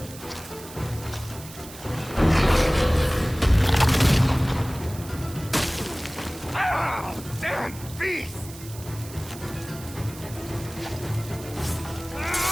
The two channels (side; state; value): right; noise; hiss, 16 dB below the sound